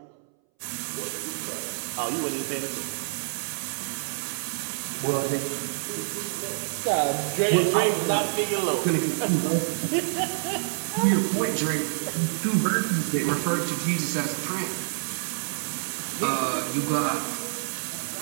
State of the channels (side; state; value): left; silent; 60 dB below the other